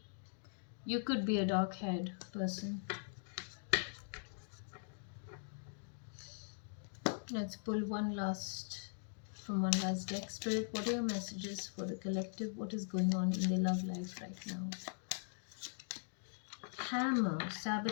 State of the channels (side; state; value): right; silent; digital silence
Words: You could be a dark haired person. Let's pull one last deck. Spirit, what are your messages for the collective? What is going on in their love life right now? Hammer,